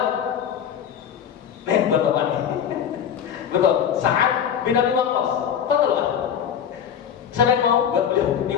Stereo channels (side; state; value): right; quieter; 8.6 dB